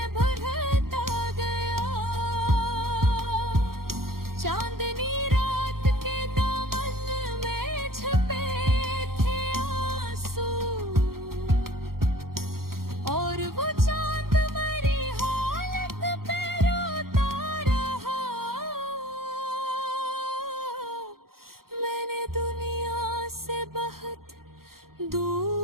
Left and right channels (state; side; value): late; left; 0.93 ms